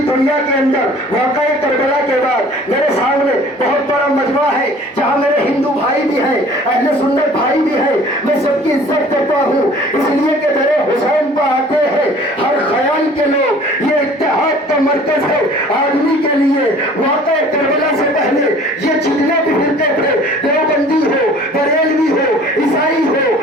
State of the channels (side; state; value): both; normal; correlation 0.50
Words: दुनिया के अंदर वाक़या करबला के बाद मेरे सामने बहुत बड़ा मजमा है जहां मेरे हिंदू भाई भी हैं, अहले सुन्नत भाई भी हैं। मैं सबकी इज्जत करता हूं, इसलिए कि मेरे हुसैन पर आते हैं हर ख्याल के लोग। ये इत्तेहाद का मरकज है आदमी के लिए। वाक़या करबला से पहले ये जितने भी फिरके थे, देवबंदी हो, बरेलवी हो, ईसाई हो,